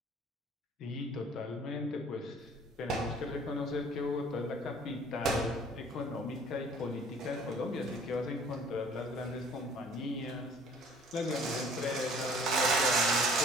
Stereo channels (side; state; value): both; normal; correlation 0.54